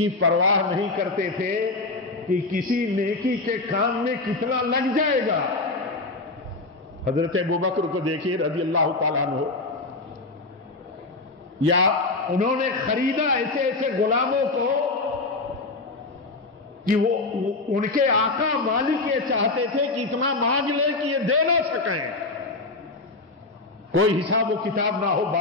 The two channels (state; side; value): quieter; right; 3.3 dB